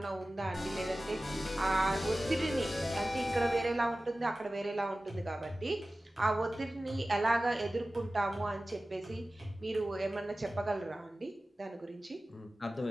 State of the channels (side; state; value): both; normal; correlation 0.96